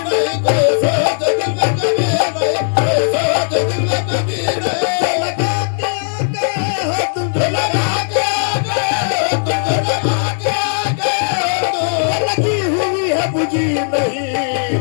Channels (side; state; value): right; silent; 58 dB below the other